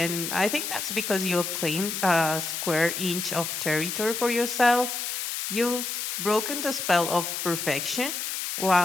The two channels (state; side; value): noise; left; hiss, 4 dB below the sound